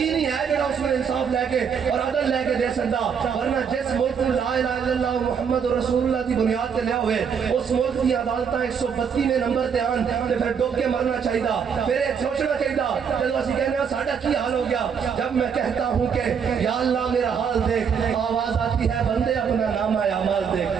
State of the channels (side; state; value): left; quieter; 6.9 dB